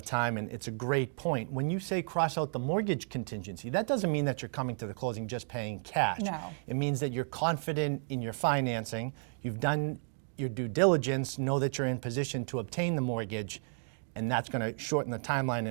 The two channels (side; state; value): left; silent; 56 dB below the other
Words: time, and it's a great point. When you say cross out the mortgage contingency, that doesn't mean that you're coming to the closing just paying cash. No. It means that you're confident in your financing, you've done your due diligence, know that you're in position to obtain the mortgage, and that's going to shorten the timeline